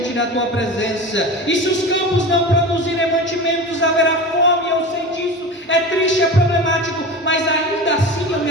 da tua presença. E se os campos não produzirem mantimentos, haverá fome. Eu sei disso, é triste, é problemático, mas ainda assim eu me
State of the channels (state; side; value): normal; both; correlation 0.30